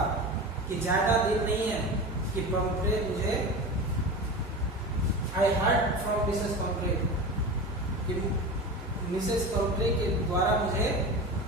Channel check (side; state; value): both; normal; correlation 0.28